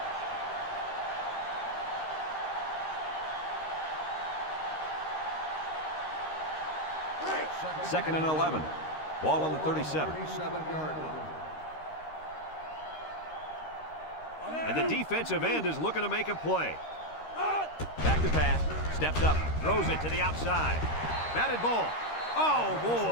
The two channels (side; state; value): right; late; 13 ms